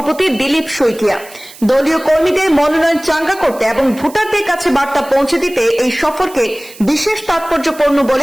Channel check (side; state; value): right; noise; hiss, 20 dB below the sound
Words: দিলীপ শইকিয়া। দলীয় কর্মীদের মনোনয়ন চাঙ্গা করতে এবং ভোটারদের কাছে বার্তা পৌঁছে দিতে এই সফরকে বিশেষ তাৎপর্যপূর্ণ